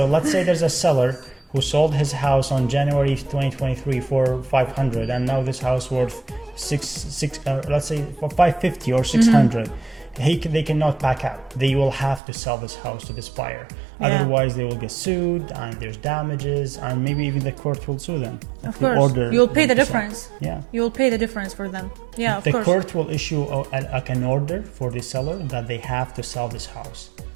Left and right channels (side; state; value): left; drops out; at 12.2 s